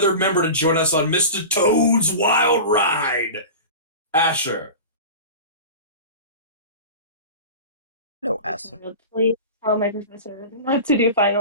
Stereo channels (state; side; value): inverted; both; correlation -0.32